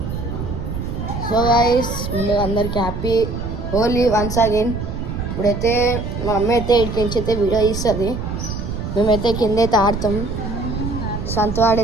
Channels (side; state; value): right; noise; rumble, 5 dB below the sound